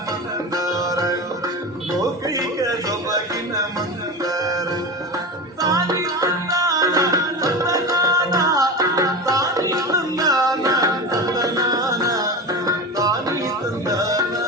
ಮಂದಾರ ಲೋಕೈಕ ಸೊಬಗಿನ ಮಂದಾರ ತಾನಿ ತಂದಾನ ತಂದನಾನ ತಾನಿ ತಂದಾನ ತಂದನಾನ ತಾನಿ ತಂದಾನ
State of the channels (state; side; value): normal; both; correlation 0.26